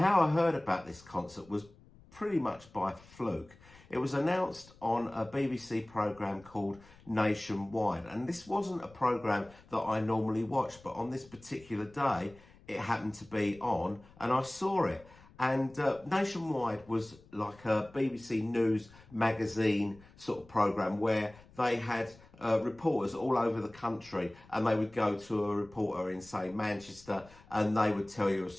I heard about this concert was pretty much by fluke. It was announced on a BBC programme called Nationwide, and this wasn't a programme that I normally watch, but on this particular day it happened to be on and I saw it. And Nationwide was like a BBC News magazine sort of programme where they had reporters all over the country, and they would go to a reporter in, say, Manchester, and they would tell you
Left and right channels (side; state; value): left; noise; rumble, 24 dB below the sound